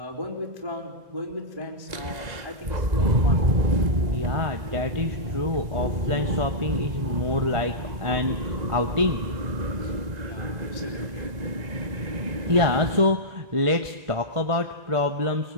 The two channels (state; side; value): late; left; 1.9 ms